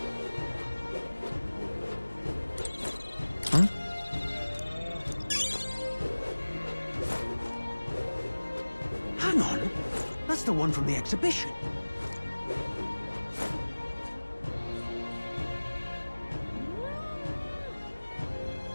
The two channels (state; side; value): inverted; both; correlation -1.00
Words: Hang on. That's the one from the exhibition.